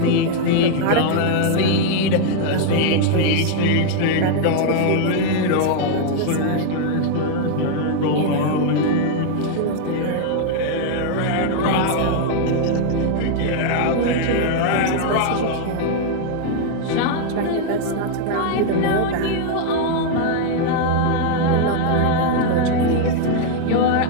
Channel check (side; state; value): both; different; correlation 0.00